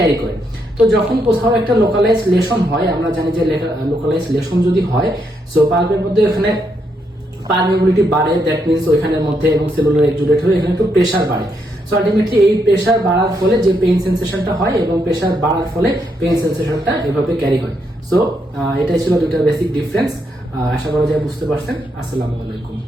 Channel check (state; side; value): normal; both; correlation 0.78